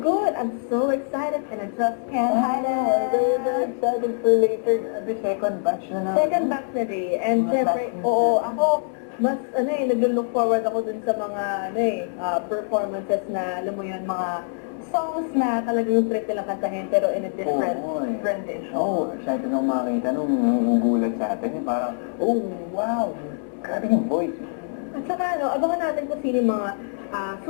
good. I'm so excited and I just can't hide I'm very, very it. excited for later. The second batch na naman. Second batch na rin. And Mga syempre, batch na oo, sila. ako, mas naglo-look forward ako dun sa mga performances na, alam mo yun, mga songs na talagang trip nilang kantahin pero in a different rendition. Oh, excited ako makakita nung gugulat sa atin. Parang, oh, wow. Grabe yung voice. At saka, abangan natin kung sino yung mga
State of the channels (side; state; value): right; silent; 62 dB below the other